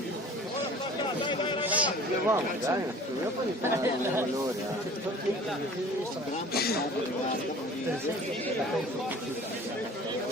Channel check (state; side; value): normal; both; correlation 0.45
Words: Vamos, dai, io poi fare un valore.